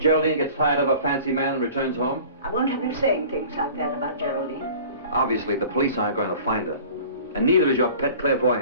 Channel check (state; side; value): inverted; both; correlation -0.45